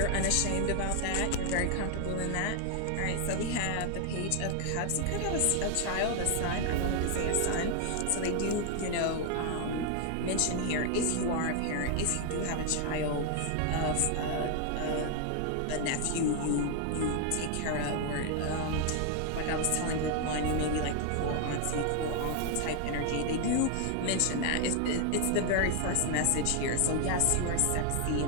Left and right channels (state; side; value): different; both; correlation 0.00